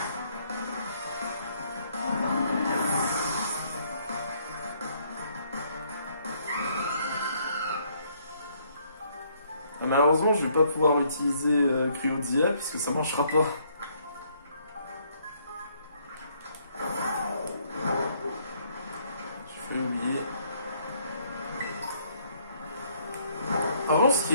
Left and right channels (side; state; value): both; inverted; correlation -0.67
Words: Malheureusement, je vais pas pouvoir utiliser Cryodia puisque ça marchera pas. Je vais oublier. En revanche, ce qui